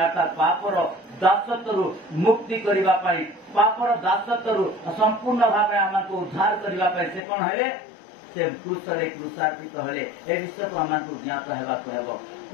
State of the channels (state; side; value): drops out; right; at 7.2 s